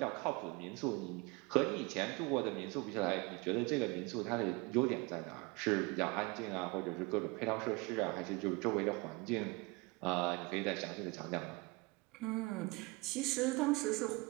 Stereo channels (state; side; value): quieter; left; 25.8 dB